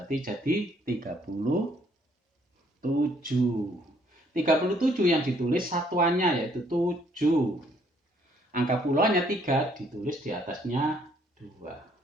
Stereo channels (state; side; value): normal; both; correlation 0.66